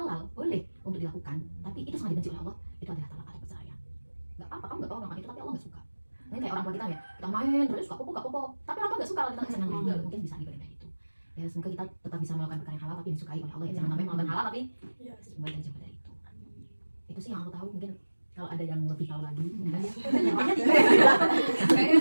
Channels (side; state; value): both; inverted; correlation -1.00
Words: boleh untuk dilakukan tapi itu sangat dibenci oleh Allah itu adalah talak atau perceraian nggak apa-apa kamu nggak tahu orang itu tapi Allah nggak suka ini kayak orang tua kita ya kita main terus suka popo tapi orang tua nggak suka kalau kita nggak senang mungkin bisa dibandingkan itu ya semoga kita tetap bisa melakukan perkara yang halal tapi disukai oleh Allah ya jangan sampai melakukan halal tapi Iya. semoga kita jauh dari itu sih yang aku tahu mungkin kalau ada yang lebih tahu lagi Kayaknya